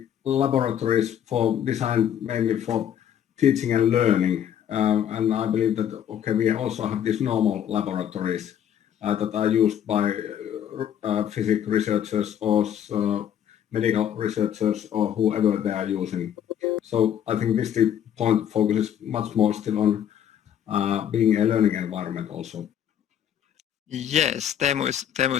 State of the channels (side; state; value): right; quieter; 9.7 dB